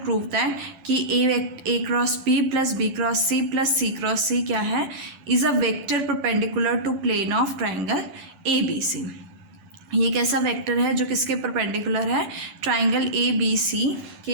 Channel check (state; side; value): late; left; 12 ms